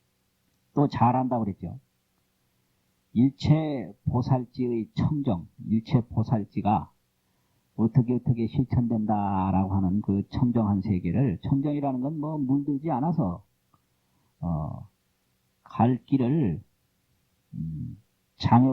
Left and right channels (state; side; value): identical; both; correlation 1.00